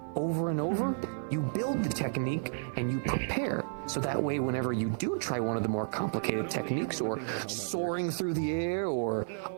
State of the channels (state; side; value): silent; left; digital silence